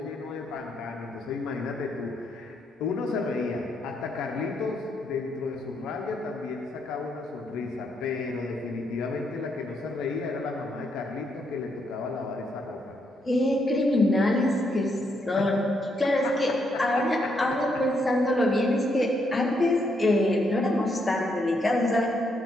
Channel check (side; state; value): both; normal; correlation 0.76